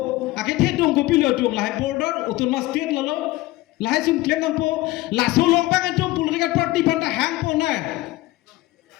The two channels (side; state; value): right; quieter; 18.4 dB